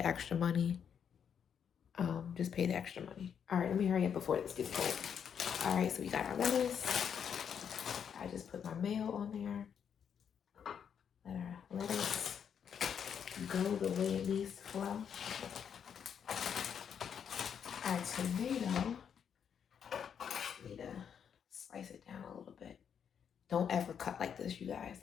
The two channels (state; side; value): quieter; right; 7.8 dB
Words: extra money. Just pay the extra money. All right, let me hurry up before this gets cold. All right, so we got our lettuce. I just put my mayo on there. Let our lettuce go the way it needs to flow. Our tomato, need to slice it down a little bit. Don't ever cut like this, you guys.